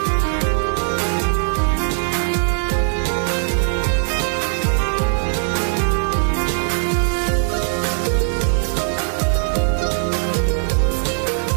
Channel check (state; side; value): silent; left; digital silence